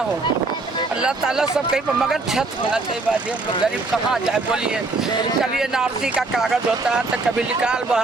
हो। अल्लाह ताला सब कहीं पर, मगर छत होना चाहिए बाजी। हम लोग गरीब कहाँ जाए बोलिए, कभी एनआरसी का कागज होता है तो कभी निकाल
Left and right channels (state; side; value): quieter; left; 3.5 dB